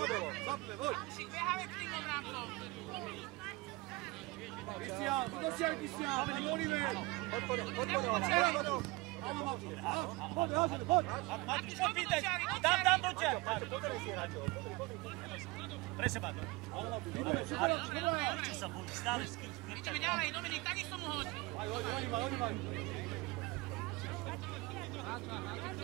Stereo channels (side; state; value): left; quieter; 23.1 dB